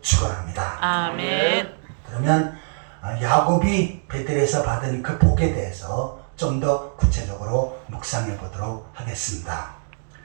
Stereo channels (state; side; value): silent; left; digital silence